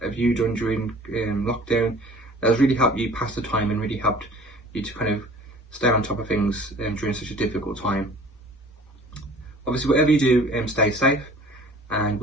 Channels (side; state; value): both; normal; correlation 0.48